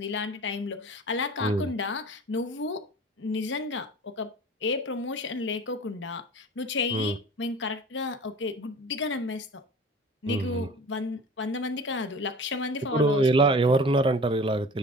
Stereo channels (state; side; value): normal; both; correlation 0.40